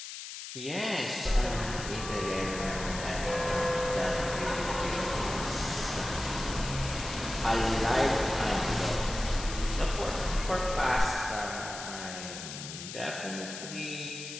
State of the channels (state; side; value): noise; left; hiss, 9 dB below the sound